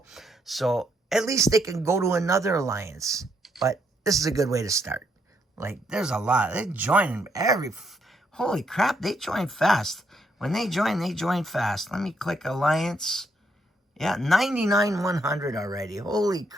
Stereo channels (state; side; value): normal; both; correlation 0.74